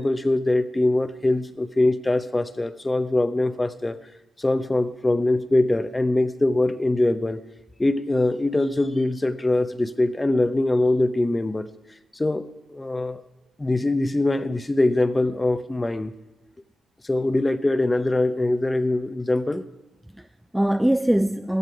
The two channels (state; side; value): normal; both; correlation 0.98